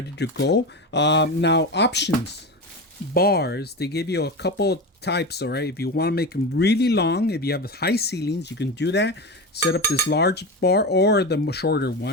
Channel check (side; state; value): both; normal; correlation 0.22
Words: to go. Now options, bars, they give you a couple types. All right, if you want to make them really long, if you have high ceilings, you can do that. Set up this large bar or the shorter